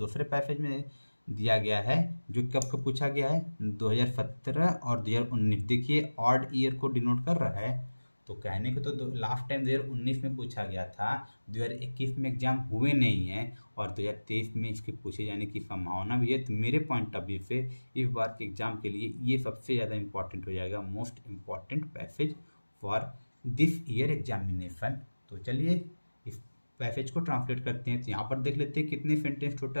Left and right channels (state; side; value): inverted; both; correlation -1.00